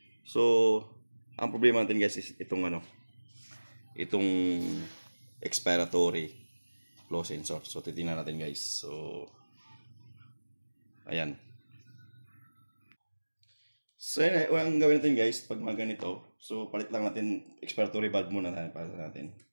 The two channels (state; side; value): inverted; both; correlation -1.00